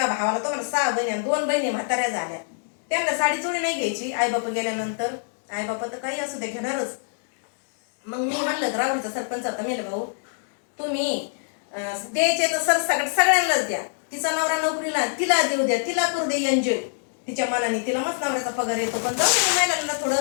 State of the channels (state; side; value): silent; right; digital silence